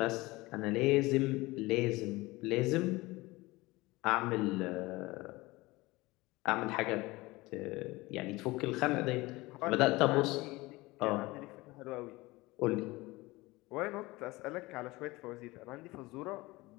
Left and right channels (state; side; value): quieter; right; 21.1 dB